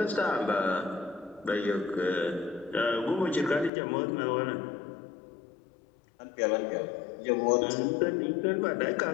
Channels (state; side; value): drops out; right; at 3.7 s